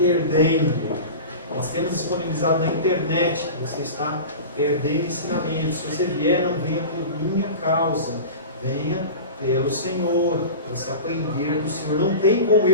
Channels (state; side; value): inverted; both; correlation -0.31